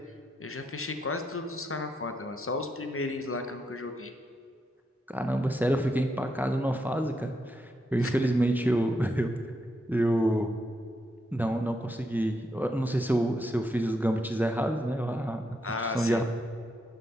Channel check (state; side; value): normal; both; correlation 0.81